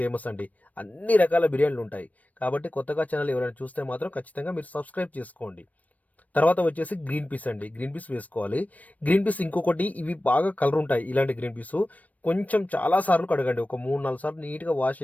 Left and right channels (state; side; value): late; right; 0.072 ms